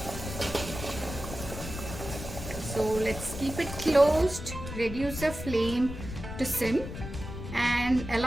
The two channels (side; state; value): left; noise; rumble, 9 dB below the sound